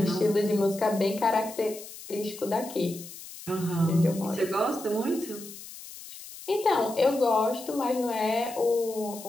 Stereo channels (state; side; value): noise; left; hiss, 14 dB below the sound